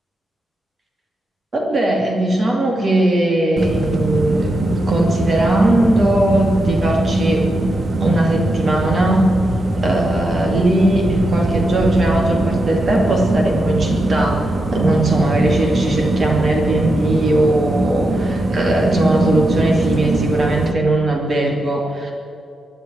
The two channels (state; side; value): normal; both; correlation 0.85